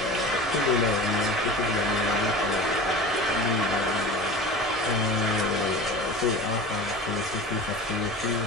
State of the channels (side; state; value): both; normal; correlation 0.35